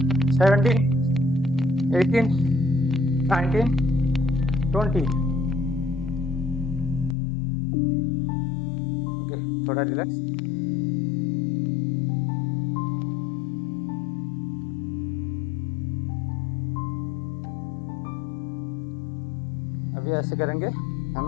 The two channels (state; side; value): drops out; right; at 7.2 s